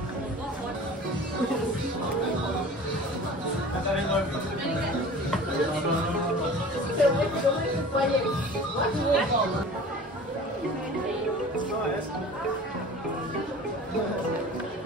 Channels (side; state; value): both; normal; correlation 0.41